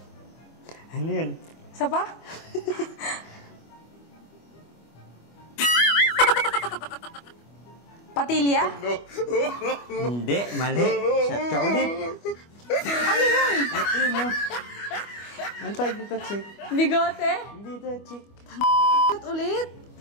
Ano yun? Isa pa? Patilya? Hindi, mali. Shot ka ulit. Ano yun? Ito yun oh. Ang tawag dito, chick? Bigote? Hindi ito, chick. At ulit?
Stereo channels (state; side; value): late; right; 25 ms